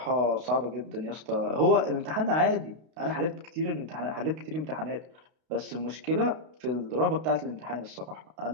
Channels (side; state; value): left; late; 32 ms